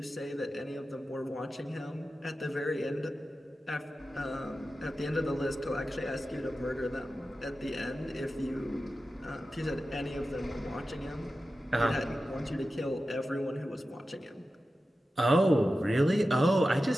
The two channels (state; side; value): normal; both; correlation 0.93